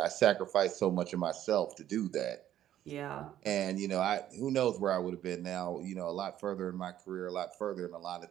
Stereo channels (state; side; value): quieter; left; 11.8 dB